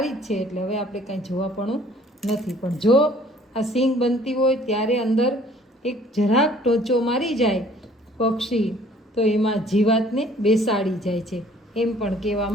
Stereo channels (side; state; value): both; normal; correlation 0.56